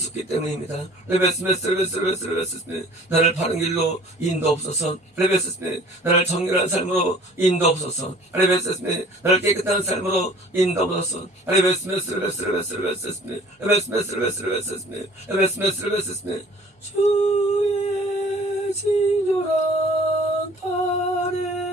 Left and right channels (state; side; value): normal; both; correlation 0.50